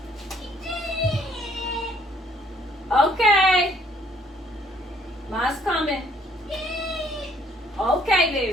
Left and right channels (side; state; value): both; normal; correlation 0.64